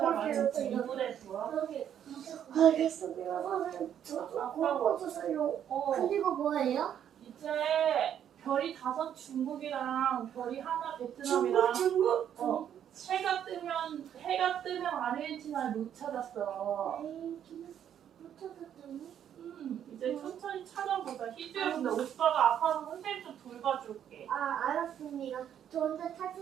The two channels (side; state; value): left; quieter; 9.6 dB